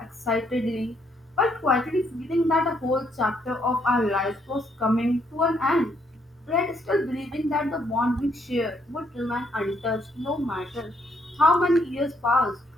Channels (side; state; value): both; normal; correlation 0.72